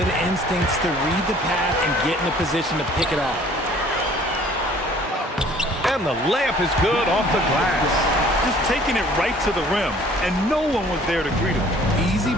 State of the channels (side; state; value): both; normal; correlation 0.54